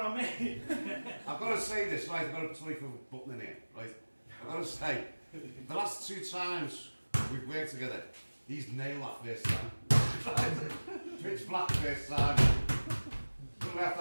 I mean. I've got to say this, right? I've got to tell you for button in here, right? I've got to say, the last 2 times we've worked together, he's nailed that first time. Pitch black first time. Couldn't have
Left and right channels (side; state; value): both; inverted; correlation -1.00